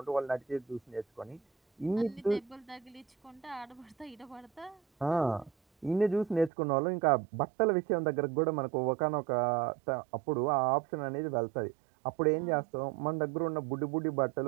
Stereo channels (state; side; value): drops out; left; at 6.5 s